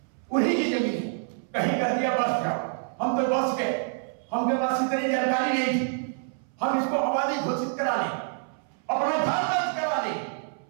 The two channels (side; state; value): left; silent; 60 dB below the other